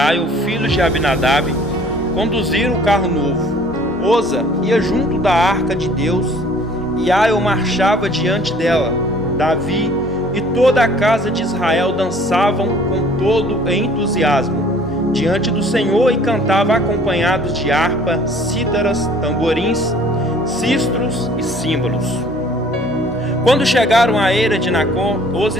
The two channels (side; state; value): both; normal; correlation 0.54